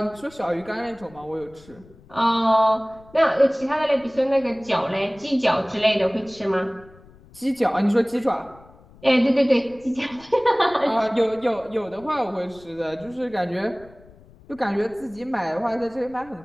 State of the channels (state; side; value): noise; left; rumble, 24 dB below the sound